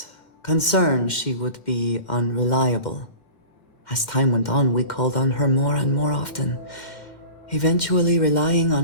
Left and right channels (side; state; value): right; late; 2.1 ms